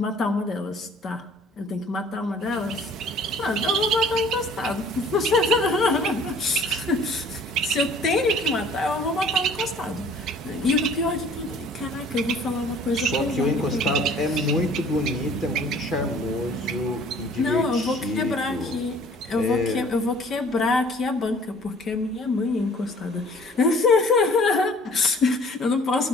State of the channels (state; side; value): normal; both; correlation 0.52